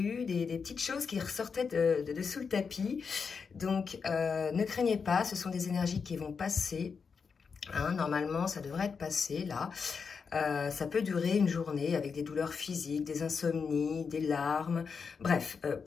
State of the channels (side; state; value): right; quieter; 5.6 dB